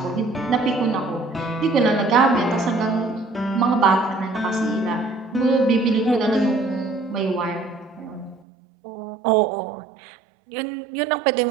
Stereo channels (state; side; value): drops out; left; at 8.5 s